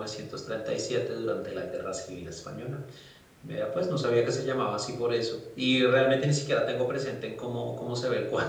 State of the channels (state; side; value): identical; both; correlation 1.00